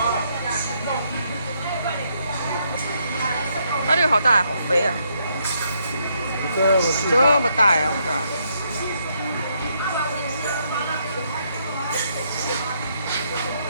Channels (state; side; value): inverted; both; correlation -0.75